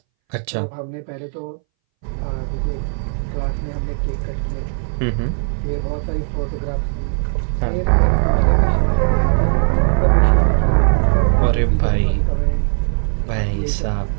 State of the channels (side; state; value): left; silent; 64 dB below the other